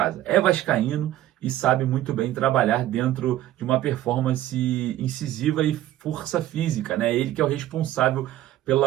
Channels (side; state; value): left; quieter; 13.7 dB